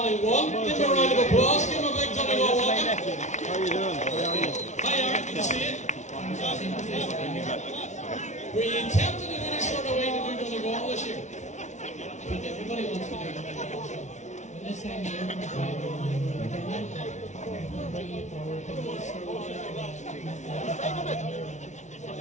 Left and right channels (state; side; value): late; right; 0.34 ms